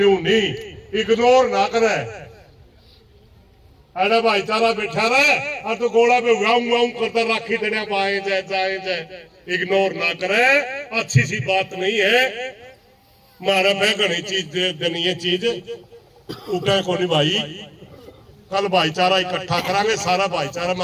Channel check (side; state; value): both; identical; correlation 1.00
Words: नहीं, इग्नोर ना करे। अरे भाईचारा बैठा रहे और तो गोला पे वाऊ करता राखी देने पाए जाए, इग्नोर ना करे, अच्छी सी बात नहीं है। मारा पे घनी चीज देनी है, चीज उठे को नहीं भाई। कल भाईचारा इकट्ठा करांगे, सारा भाईचारा में